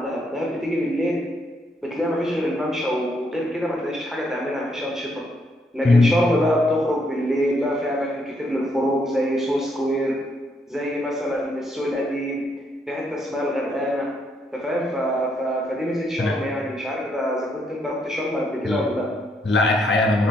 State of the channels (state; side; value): normal; both; correlation 0.74